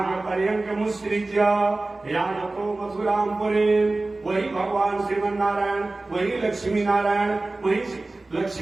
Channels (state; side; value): quieter; left; 3.1 dB